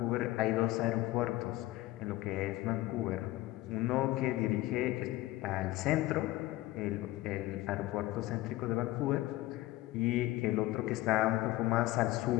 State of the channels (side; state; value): right; quieter; 17.5 dB